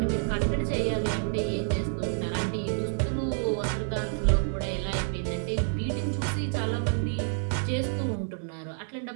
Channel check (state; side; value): silent; left; 59 dB below the other